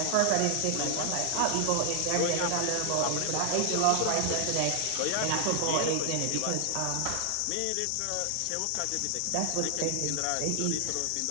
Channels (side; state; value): both; different; correlation 0.00